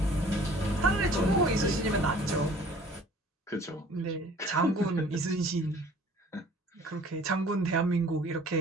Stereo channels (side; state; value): both; normal; correlation 0.51